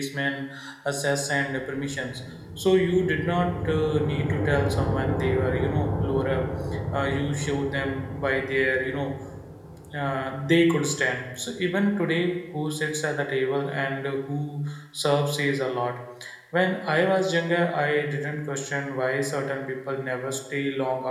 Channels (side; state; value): both; identical; correlation 1.00